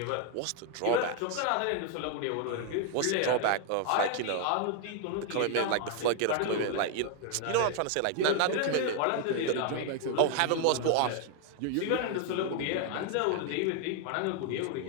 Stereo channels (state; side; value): different; both; correlation 0.00